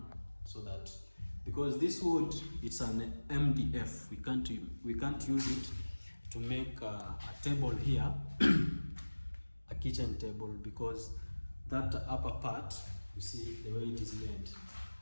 so that, because this wood, it's an MDF, we can't use it to make a table here, a kitchen table, because that upper part, you see the way it is made,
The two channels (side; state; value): both; inverted; correlation -1.00